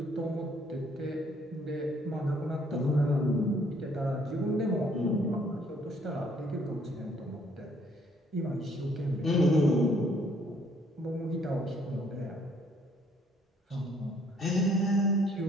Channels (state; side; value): normal; both; correlation 0.64